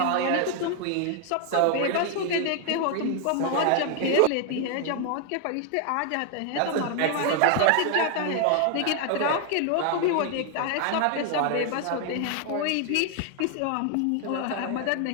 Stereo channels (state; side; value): different; both; correlation 0.00